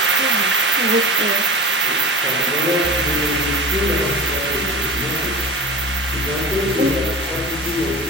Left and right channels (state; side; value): normal; both; correlation 0.32